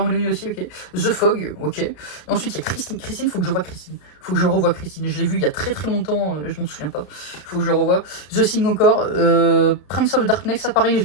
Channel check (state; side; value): late; right; 34 ms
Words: aussi, ok. The Fog, ok. Et ensuite il y a Christine, faut que je vois Christine. Faut que je revoie Christine. Je l'ai vu il y a très très longtemps, je m'en souviens pas. Faut que je le revoie. The Thing encore, Prince of Darkness, ça pareil, je